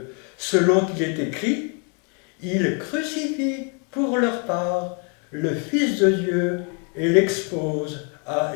selon qu'il est écrit, ils crucifient pour leur part le Fils de Dieu et l'expose à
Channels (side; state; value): right; quieter; 35.8 dB